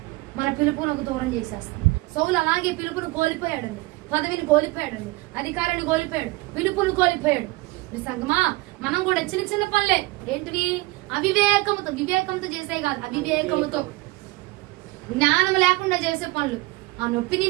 మన పిలుపునకు దూరం చేసేస్తుంది. సౌలు అలాగే పిలుపును కోల్పోయాడండి, పదవిని కోల్పోయాడండి, అధికారాన్ని కోల్పోయాడు, పిలుపును కోల్పోయాడు. సంగమా మనం కూడా చిన్న చిన్న పనులే ఏంటివి అవివేకముతో, వివేకంతో చేసే కాదు, అవివేకముతో జ్ఞానం లేకుండా చేసే పనులు. ఆ నొప్పి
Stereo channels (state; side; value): quieter; left; 22.0 dB